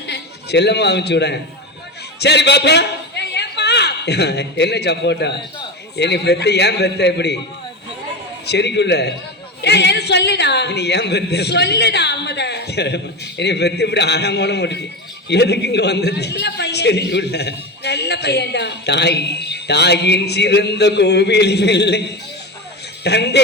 செல்லம்மா அமுச்சு விட. சரி பாப்பா, என்ன சப்போட்டா? என்னை பெத்த ஏன் பெத்த எப்படி சரிக்குள்ள சொல்லுடா, நீ ஏன் பெத்த சொல்லுடா. என்னை பெத்து இப்படி ஆழமான முடிச்சு எதுக்கு இங்க வந்தது? சரிக்குள்ள நல்ல பையன்டா. தாய் தாயின் சிறந்த கோவில் இல்லை,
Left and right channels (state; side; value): normal; both; correlation 0.21